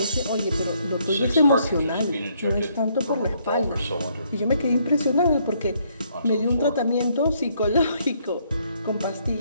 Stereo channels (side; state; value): both; inverted; correlation -0.70